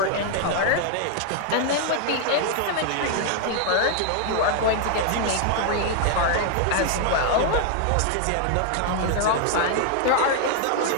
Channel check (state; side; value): different; both; correlation 0.00